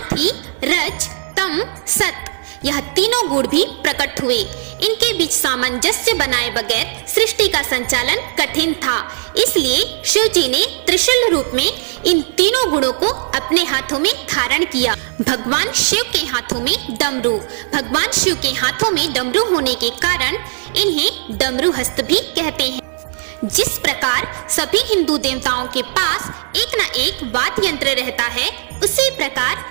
ही रज, तम, सत, यह तीनों गुण भी प्रकट हुए। इनके बीच सामंजस्य बनाए बगैर सृष्टि का संचालन कठिन था, इसलिए शिव जी ने त्रिशूल रूप में इन तीनों गुणों को अपने हाथों में धारण किया। भगवान शिव के हाथों में डमरू। भगवान शिव के हाथों में डमरू होने के कारण इन्हें डमरू हस्त भी कहते हैं। जिस प्रकार सभी हिंदू देवताओं के पास एक न एक वाद्य यंत्र रहता है, उसी प्रकार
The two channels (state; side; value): silent; left; 68 dB below the other